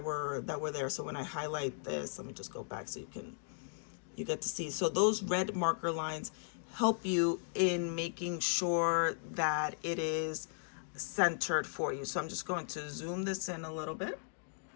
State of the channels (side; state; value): right; silent; digital silence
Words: were there. So when I highlight this, let me just go back so you get to see. So those red marker lines help you in making sure that it is centered for you. So I'm just going to zoom this in a little bit.